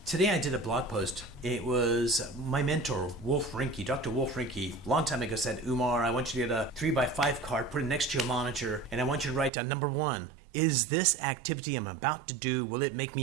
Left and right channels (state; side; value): drops out; left; at 9.5 s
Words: Today I did a blog post. It was my mentor, Wolf Rinke, Dr. Wolf Rinke, a long time ago said, Umar, I want you to get a 3x5 card, put it next to your monitor, and I want you to write down number 1. Is this activity I'm about to do, will it make